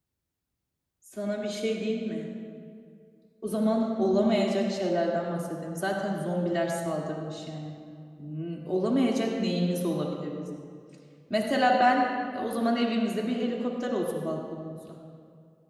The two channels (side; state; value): both; identical; correlation 1.00